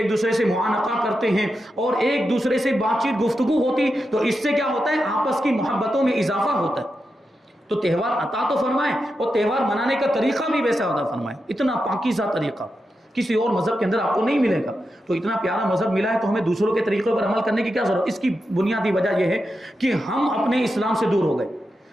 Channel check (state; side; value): normal; both; correlation 0.88